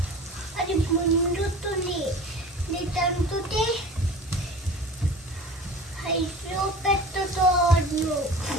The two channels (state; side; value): normal; both; correlation 0.39